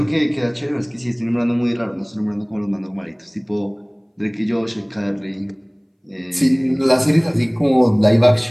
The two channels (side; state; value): both; identical; correlation 1.00